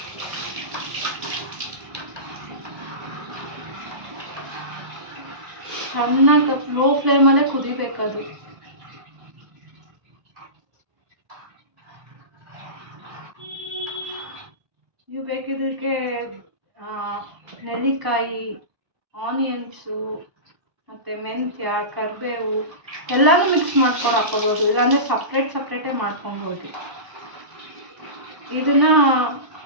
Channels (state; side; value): late; left; 1.0 ms